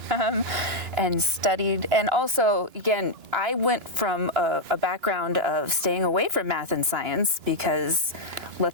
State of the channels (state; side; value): late; left; 2.9 ms